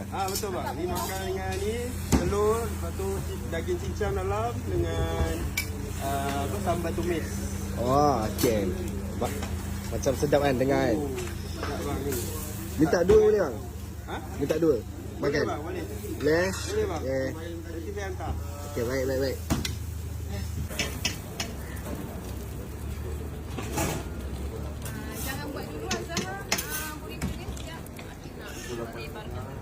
Betul bang. Ni makan dengan ni telur, lepas tu daging cincang dalam dengan sambal tumis. Oh, okey. Macam sedap kan dengar kan? Sedap bang ni. Minta dua boleh bang? Ha? Minta dua? Makan? Boleh bang, boleh. Boleh? Boleh bang. Okay. Nanti saya hantar. Okey, baik. Jangan buat dulu Azhar. Burrito dia sekejap. Asyik nak lebarkan.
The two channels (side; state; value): both; identical; correlation 1.00